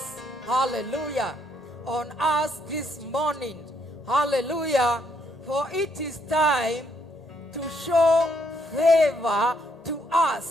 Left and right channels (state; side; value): normal; both; correlation 0.72